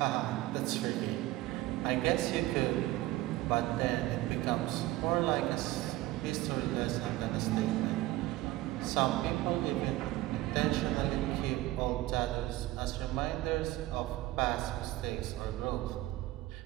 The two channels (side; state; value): left; quieter; 17.2 dB